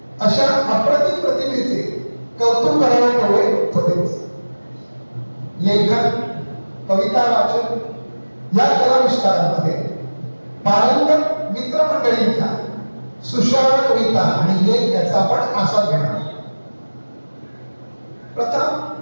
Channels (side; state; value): both; inverted; correlation -1.00